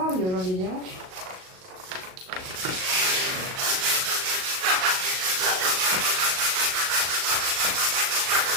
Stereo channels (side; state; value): left; late; 38 ms